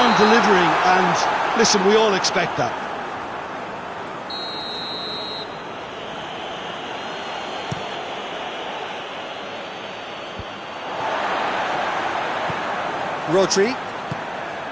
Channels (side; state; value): both; identical; correlation 1.00